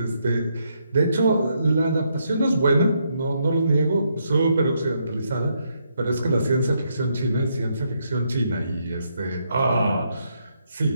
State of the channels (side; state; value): both; inverted; correlation -0.76